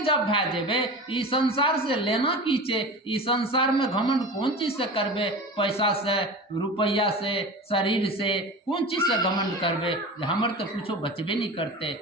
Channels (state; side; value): normal; both; correlation 0.32